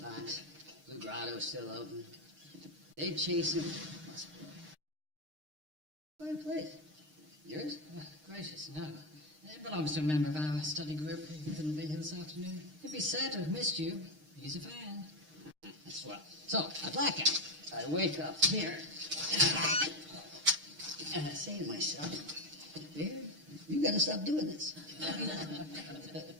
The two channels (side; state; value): left; late; 6.5 ms